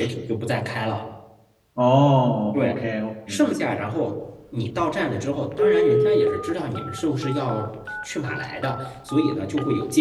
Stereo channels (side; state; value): both; identical; correlation 1.00